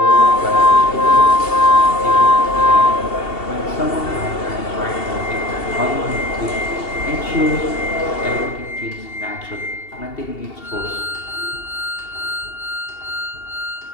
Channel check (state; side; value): late; right; 2.7 ms